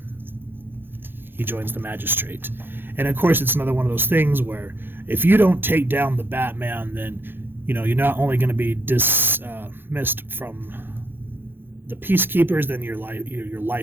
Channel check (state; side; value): late; left; 0.10 ms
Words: He joins the Magistrate. And of course, it's another one of those things where if you don't take down the Batman, then, you're not only going to be dismissed from the Peacekeepers, then your